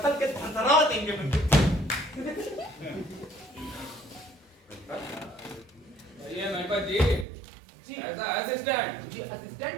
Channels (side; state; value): left; drops out; at 7.2 s